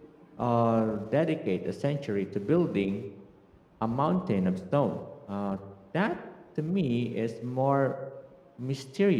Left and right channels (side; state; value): both; identical; correlation 1.00